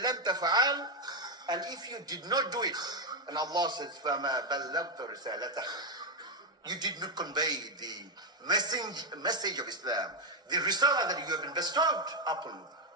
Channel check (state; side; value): normal; both; correlation 0.04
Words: لَمْ تَفْعَلْ, and if you did not do it, and Allah says, فَمَا بَلَّغْتَ رِسَالَتَهُ, you did not convey the message of Islam, the risalah that you have been bestowed upon.